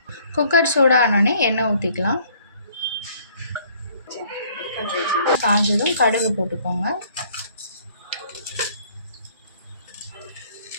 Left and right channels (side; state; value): both; inverted; correlation -0.60